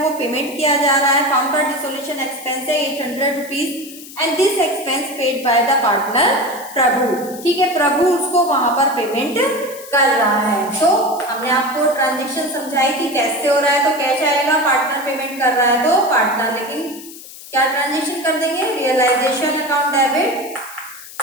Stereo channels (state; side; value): noise; left; hiss, 16 dB below the sound